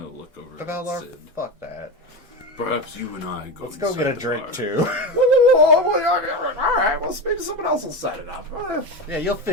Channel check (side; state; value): left; late; 1.9 ms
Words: look over at Beldar, Sid. fuck that. Perhaps you and I go. Let's go get a inside the drink bar. too. All right. Well, maybe someone else will set it up. Yeah, you'll